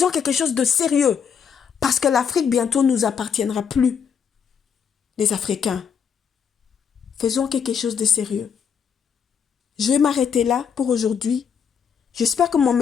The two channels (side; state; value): right; quieter; 7.1 dB